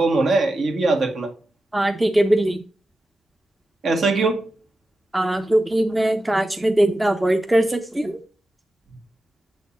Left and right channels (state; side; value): normal; both; correlation 0.91